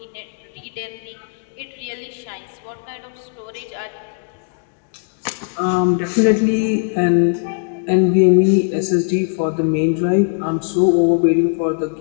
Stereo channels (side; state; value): right; silent; digital silence